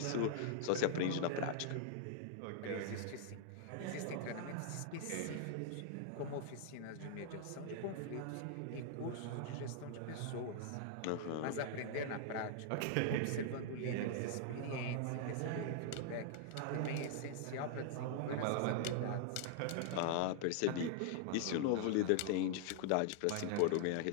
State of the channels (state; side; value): different; both; correlation -0.01